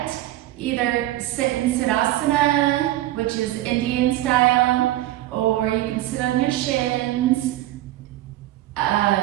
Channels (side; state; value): left; quieter; 15.1 dB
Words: Either sit in Siddhasana, which is Indian style, or you can sit on your shins,